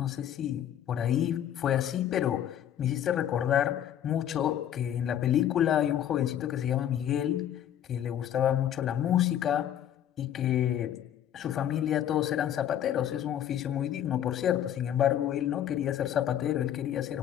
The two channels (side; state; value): right; quieter; 10.5 dB